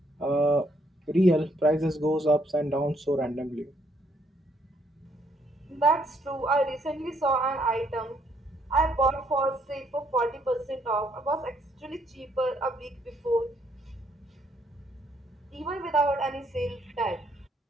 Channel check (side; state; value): both; normal; correlation 0.70